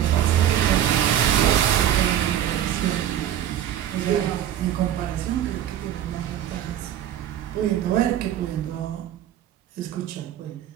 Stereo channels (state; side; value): quieter; left; 11.1 dB